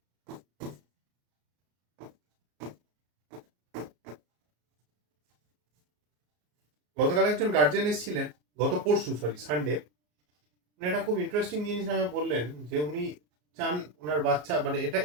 গতকাল একজন গার্জিয়ান এসেছিলেন, গত পরশু সানডে, উনি একটা খুব ইন্টারেস্টিং জিনিস আমাকে বললেন যে উনি চান ওনার বাচ্চা, মানে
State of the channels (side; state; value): left; late; 33 ms